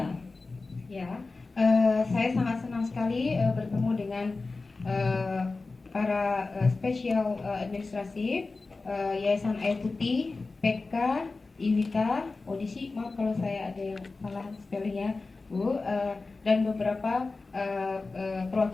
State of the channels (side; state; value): right; quieter; 3.7 dB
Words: Ya, saya sangat senang sekali bertemu dengan para spesial administrasi Yayasan Air Putih, PK, Iwita, Odisi, maaf kalau saya ada yang salah spellingnya, Bu, dan beberapa